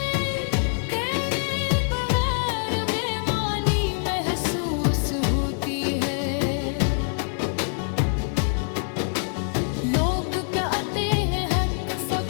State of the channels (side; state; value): right; silent; 62 dB below the other